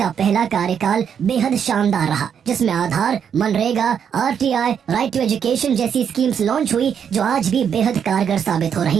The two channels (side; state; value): left; quieter; 7.9 dB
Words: पहला कार्यकाल बेहद शानदार रहा, जिसमें आधार, मनरेगा, आरटीआई, राइट टू एजुकेशन जैसी स्कीम्स लॉन्च हुई जो आज भी बेहद कारगर साबित हो